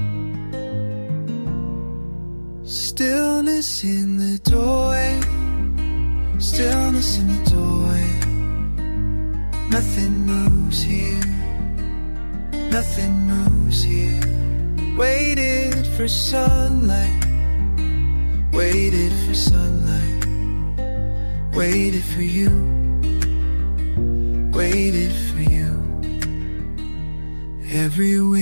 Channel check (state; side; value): inverted; both; correlation -1.00